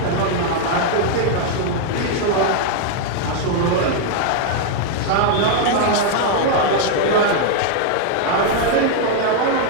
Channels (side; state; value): both; different; correlation 0.00